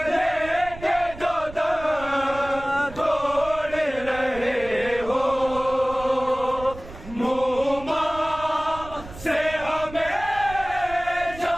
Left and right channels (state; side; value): noise; right; rumble, 15 dB below the sound